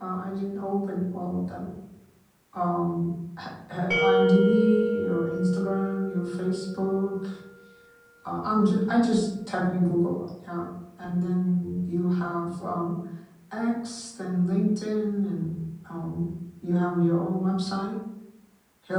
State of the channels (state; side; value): identical; both; correlation 1.00